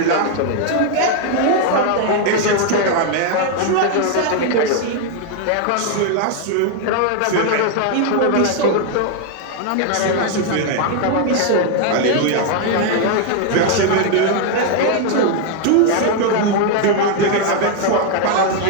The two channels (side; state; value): both; different; correlation 0.00